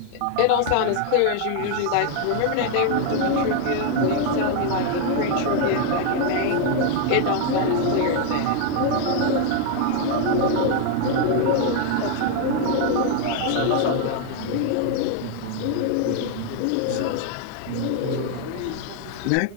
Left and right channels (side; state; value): both; different; correlation 0.00